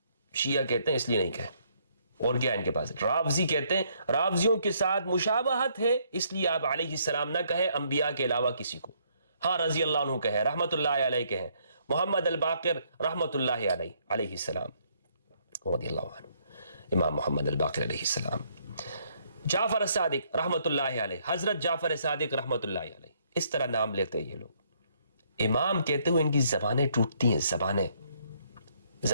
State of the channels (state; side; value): inverted; both; correlation -0.69